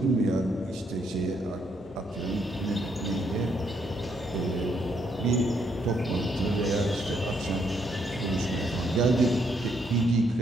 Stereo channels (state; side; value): normal; both; correlation 0.73